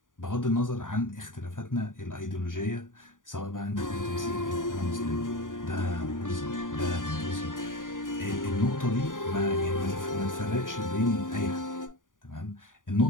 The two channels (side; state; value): right; late; 0.88 ms